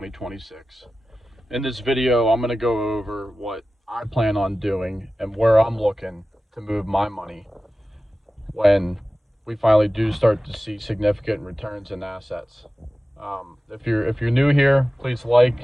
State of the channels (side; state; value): both; normal; correlation 0.95